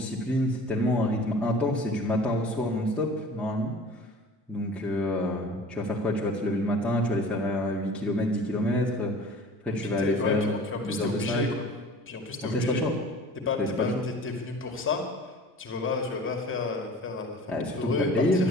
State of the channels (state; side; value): normal; both; correlation 0.43